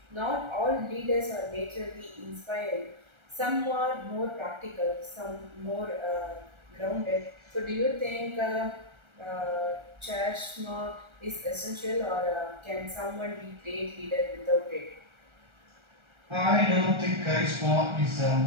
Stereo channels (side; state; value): left; late; 1.3 ms